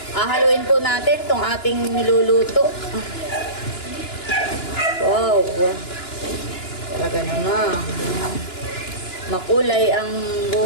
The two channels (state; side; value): late; right; 2.9 ms